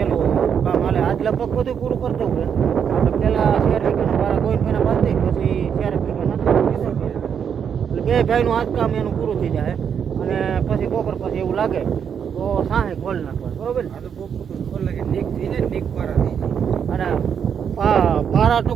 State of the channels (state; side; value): quieter; left; 7.6 dB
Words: કામ હાલે. આજ લગભગ બધું પૂરું કરતું હોય. આપણે પહેલાં 4 વીઘાના વાળા ગોવિંદભાઈના બાંધી પછી 4 વીઘાના એટલે 2 ભાઈનું આજ કામ એનું પૂરું થઈ જાય. અને પછી બપોર પછી એવું લાગે તો સાહે ખોલ નાખવા. બરોબર ને? આ તો બહુ ખોલે કે નીક થઈ જાય, નીક પારા થઈ જાય. અને પારા